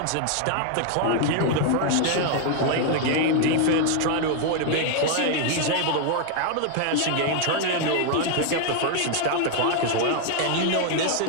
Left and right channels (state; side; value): different; both; correlation 0.00